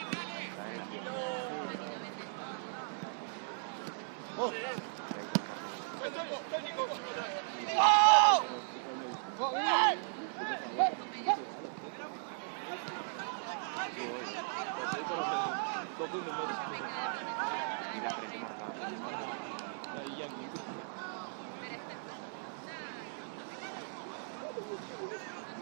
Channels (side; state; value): left; silent; 53 dB below the other